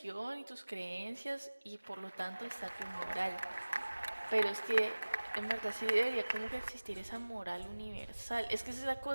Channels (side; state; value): both; inverted; correlation -1.00